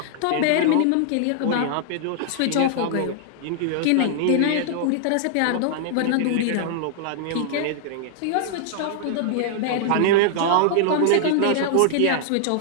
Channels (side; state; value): both; different; correlation -0.01